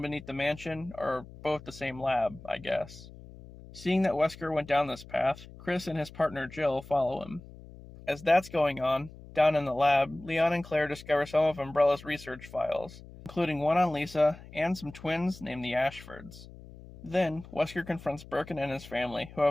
beneath the mansion are both the same lab, I guess. Seeing that Wesker went down this path, Chris and his partner Jill follow him. As that's going on, down in the lab, Leon and Claire discover some of Umbrella's research files, including one on Lisa and some twins named the Ashfords. Then, Wesker confronts Birkin and his family, who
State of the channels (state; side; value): noise; left; hum, 18 dB below the sound